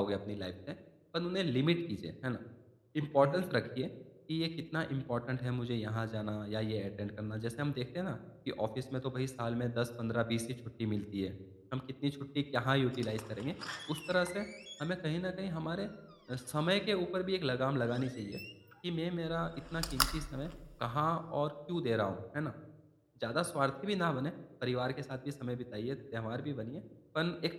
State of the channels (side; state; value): both; identical; correlation 1.00